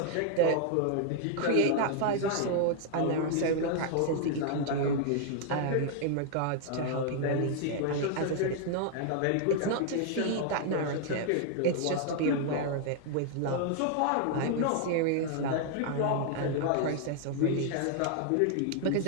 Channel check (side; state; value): both; different; correlation 0.00